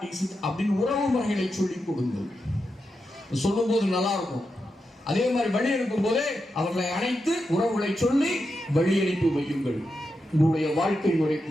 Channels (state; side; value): normal; both; correlation 0.87